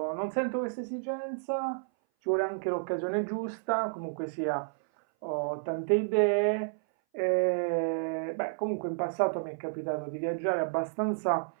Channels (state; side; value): silent; left; 57 dB below the other